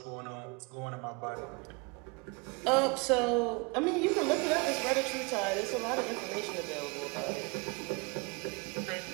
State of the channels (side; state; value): left; quieter; 29.5 dB